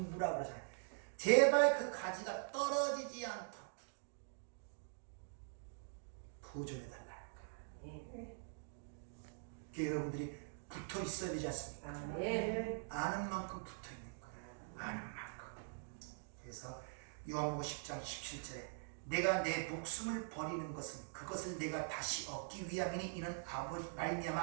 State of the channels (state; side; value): silent; left; digital silence